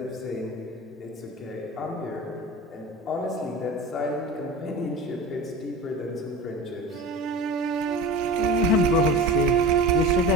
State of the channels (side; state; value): both; normal; correlation 0.32